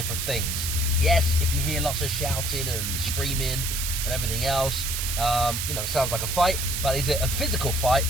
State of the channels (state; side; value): noise; right; hiss, 2 dB below the sound